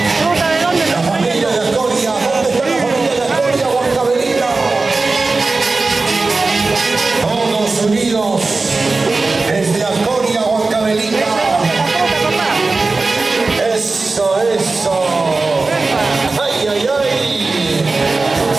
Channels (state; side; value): quieter; left; 3.7 dB